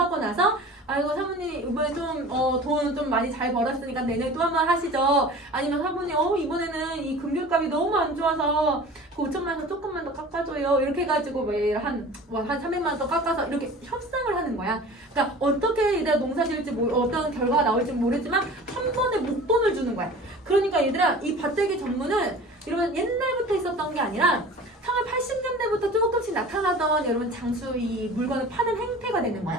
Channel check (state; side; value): normal; both; correlation 0.41